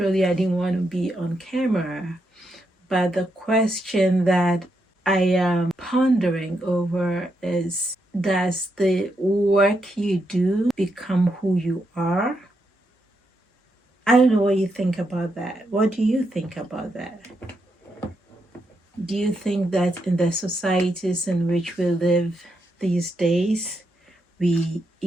I didn't want to be on camera. But the question that I am pondering over is, does the work you do become who you are? I don't know what you think about that. What do you think about that? Do you think that in the societies in which we live these days, we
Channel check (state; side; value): normal; both; correlation 0.81